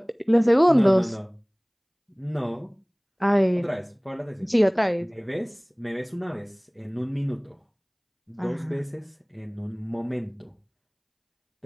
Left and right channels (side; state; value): both; identical; correlation 1.00